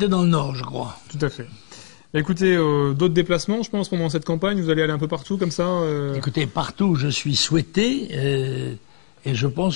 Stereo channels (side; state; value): right; silent; digital silence